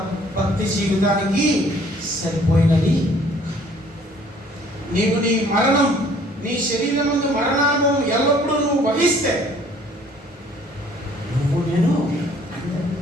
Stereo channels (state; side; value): normal; both; correlation 0.57